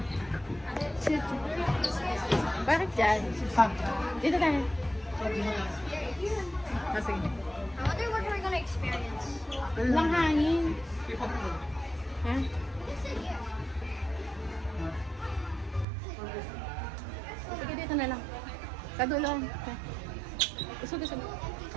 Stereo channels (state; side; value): drops out; left; at 15.9 s